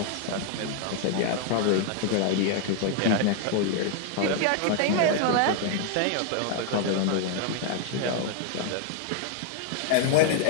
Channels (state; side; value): different; both; correlation 0.00